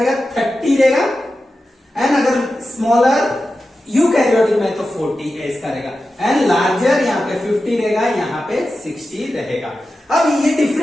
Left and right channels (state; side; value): normal; both; correlation 0.92